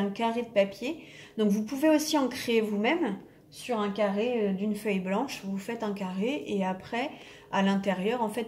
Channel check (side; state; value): both; identical; correlation 1.00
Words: carré de papier. Donc vous pouvez aussi en créer vous-même sur un carré d'une feuille blanche. Vous faites un carré et après, à l'intérieur, en